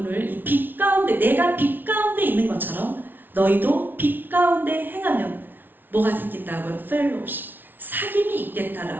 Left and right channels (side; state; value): left; late; 0.092 ms